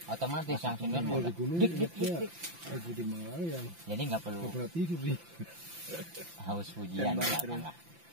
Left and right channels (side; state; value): left; late; 5.9 ms